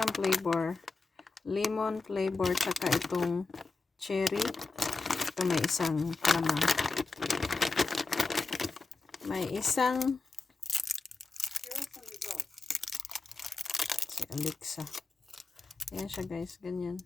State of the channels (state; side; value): quieter; right; 3.8 dB